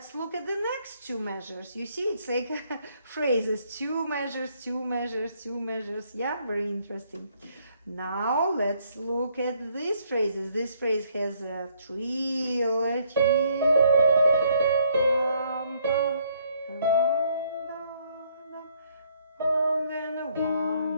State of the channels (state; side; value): inverted; both; correlation -0.69